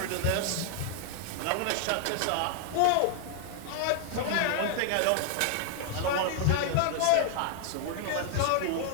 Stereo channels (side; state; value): both; different; correlation 0.00